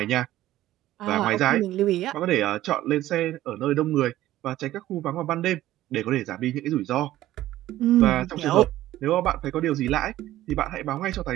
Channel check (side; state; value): left; quieter; 14.6 dB